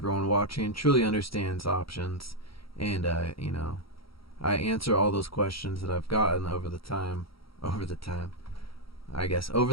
watching truly understands options, and you know, I answer all those questions that I've gotten over the time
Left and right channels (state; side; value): late; right; 0.75 ms